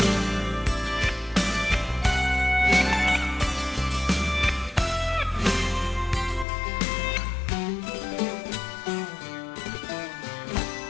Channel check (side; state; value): right; drops out; at 6.5 s